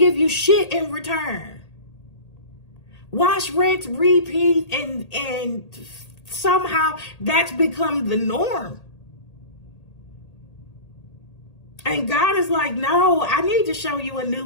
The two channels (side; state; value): right; late; 1.8 ms